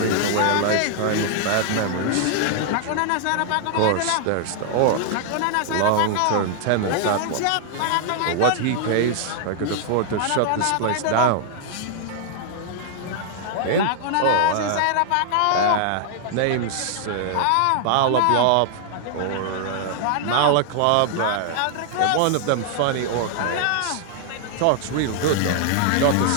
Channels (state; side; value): different; both; correlation -0.01